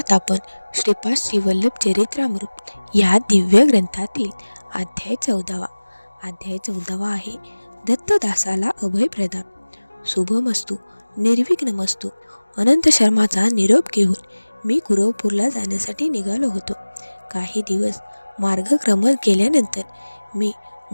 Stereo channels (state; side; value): inverted; both; correlation -1.00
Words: आपण श्रीपाद श्रीवल्लभ चरित्रामृत या दिव्य ग्रंथातील अध्याय 14. अध्याय 14 आहे दत्तदासाला अभय प्रदान. शुभमस्तू, निर्विघ्नमस्तू. अनंत शर्माचा निरोप घेऊन मी कुरवपूरला जाण्यासाठी निघालो होतो. काही दिवस मार्गक्रमण केल्यानंतर मी